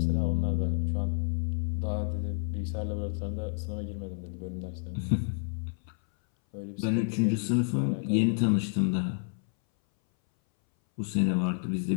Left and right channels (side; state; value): right; silent; 58 dB below the other